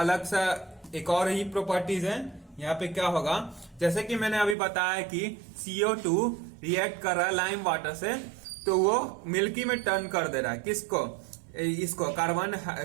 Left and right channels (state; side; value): drops out; left; at 4.5 s